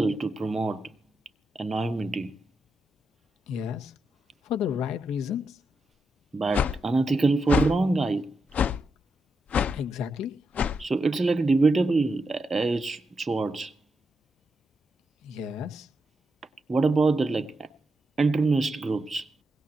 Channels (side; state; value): both; normal; correlation 0.85